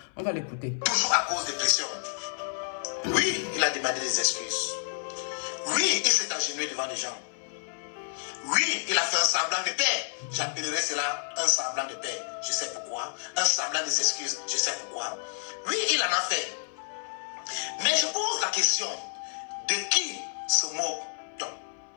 On va l'écouter. Toujours à cause des pressions. Oui, il a demandé des excuses. Oui, il s'est agenouillé devant les gens. Oui, il a fait un semblant de paix. J'appellerais cela un semblant de paix. Je sais pourquoi. Un semblant des excuses. Je sais pourquoi. Oui, il en a fait. Mais je pose la question, de qui se moque-t-on?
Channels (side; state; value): right; silent; 58 dB below the other